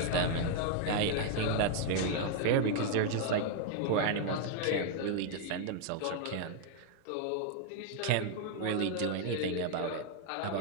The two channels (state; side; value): different; both; correlation 0.00